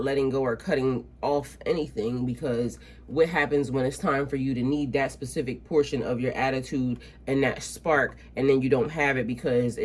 letting go or cutting off anything, because what happens when it's time for you to need that specific portion of your attitude and that spark, and then you don't have it because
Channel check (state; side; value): identical; both; correlation 1.00